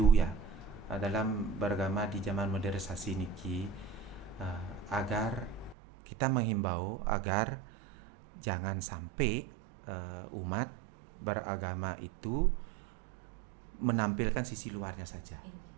ya, dalam beragama di zaman modernisasi niki, agar kita menghimbau agar jangan sampai umat beragama itu menampilkan sisi luarnya saja.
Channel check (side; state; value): left; drops out; at 5.8 s